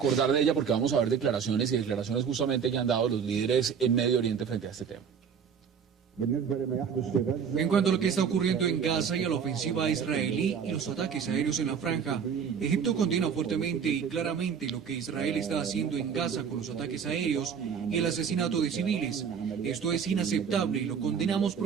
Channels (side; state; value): left; quieter; 6.9 dB